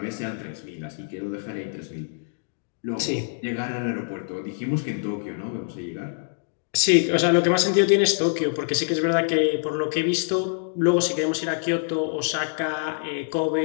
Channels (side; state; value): right; silent; digital silence